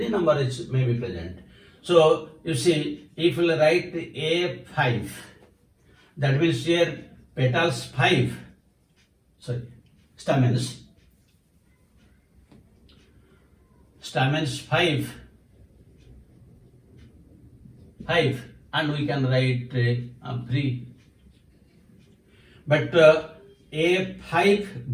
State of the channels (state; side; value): identical; both; correlation 1.00